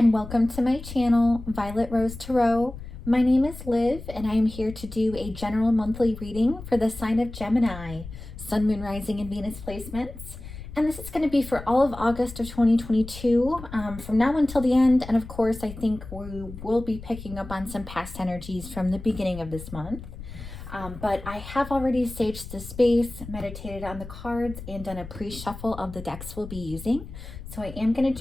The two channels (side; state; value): left; noise; rumble, 13 dB below the sound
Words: welcome to my channel, Violet Rose Tarot. My name is Liv and I am here to do a general monthly reading for the sign of Gemini, Sun, Moon, Rising, and Venus placements. And this is going to be for all of August of 2022, from now until the end. And of course, I think we will be picking up on some past energies from the beginning of this month. But I have already staged the space, meditated on the cards, and done a pre-shuffle of the decks we'll be using. So I am going to